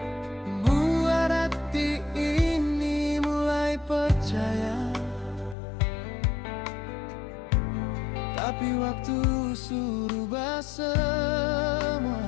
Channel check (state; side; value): drops out; right; at 5.6 s